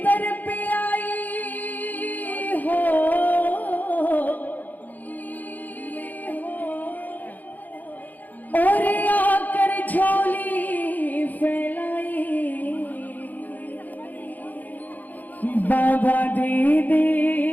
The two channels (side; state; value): right; late; 0.083 ms